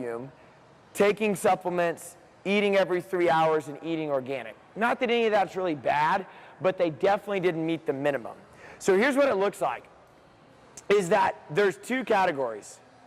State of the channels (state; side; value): identical; both; correlation 1.00